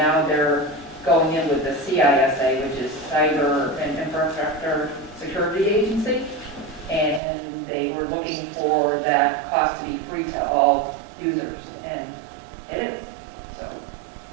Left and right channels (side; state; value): left; drops out; at 7.2 s